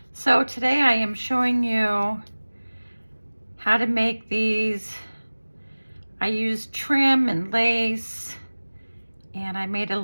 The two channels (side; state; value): both; inverted; correlation -1.00